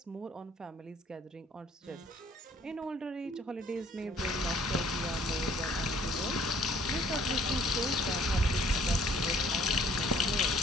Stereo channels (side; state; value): both; normal; correlation 0.59